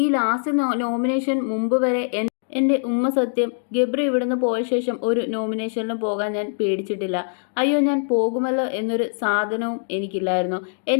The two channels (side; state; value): right; silent; digital silence